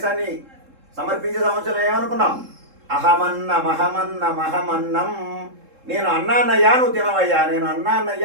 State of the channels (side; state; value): left; late; 3.7 ms